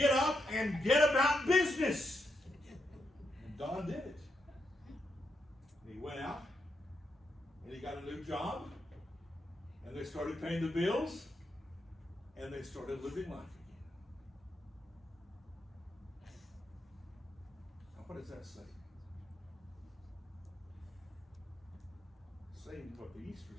up and get about business. And Don did it. And he went out and he got a new job. And they started paying the bills, and they started living life again. Now, what does that say? Saying what the Easter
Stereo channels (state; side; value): normal; both; correlation 0.82